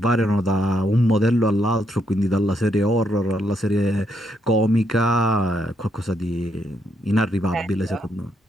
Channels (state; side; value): normal; both; correlation 0.76